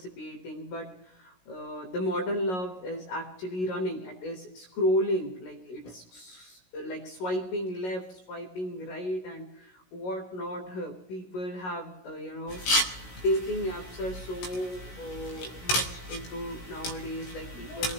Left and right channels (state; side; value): late; right; 16 ms